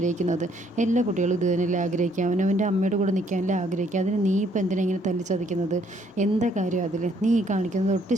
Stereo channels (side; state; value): both; normal; correlation 0.66